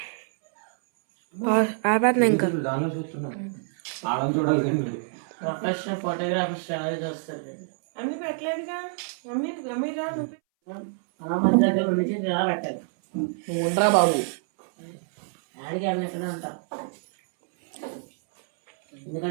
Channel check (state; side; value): silent; left; 61 dB below the other